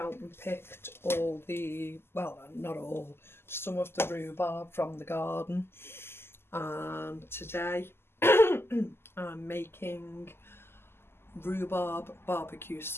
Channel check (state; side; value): late; right; 0.12 ms